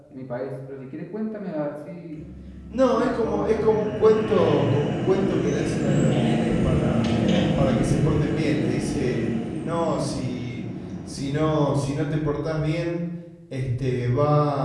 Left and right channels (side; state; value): both; identical; correlation 1.00